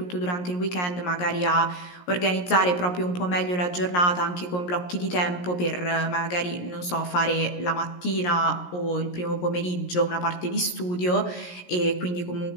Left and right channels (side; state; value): right; late; 17 ms